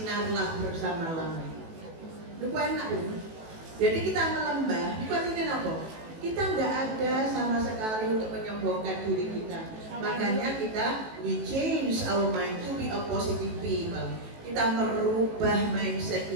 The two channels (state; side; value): late; left; 18 ms